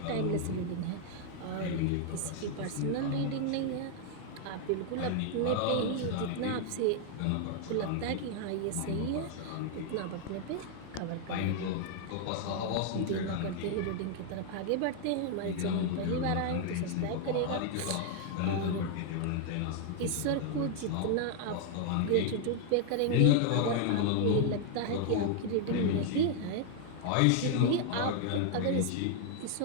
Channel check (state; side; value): different; both; correlation 0.00